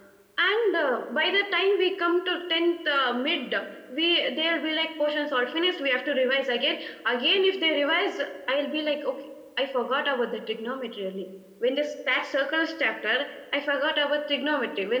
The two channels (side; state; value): both; identical; correlation 1.00